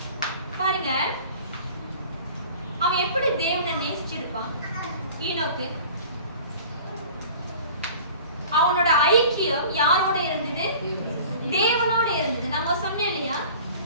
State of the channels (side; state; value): both; inverted; correlation -0.44